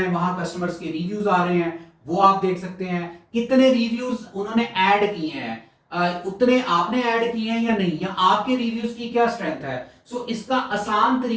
वहां कस्टमर्स के रिव्यूज आ रहे हैं वो आप देख सकते हैं, कितने रिव्यूज उन्होंने ऐड किए हैं, उतने आपने ऐड किए हैं या नहीं, या आपके रिव्यूज की क्या स्ट्रेंथ है। इसका आसान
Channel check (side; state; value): both; identical; correlation 1.00